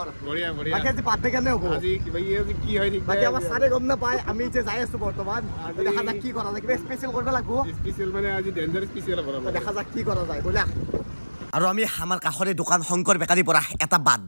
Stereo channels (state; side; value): inverted; both; correlation -1.00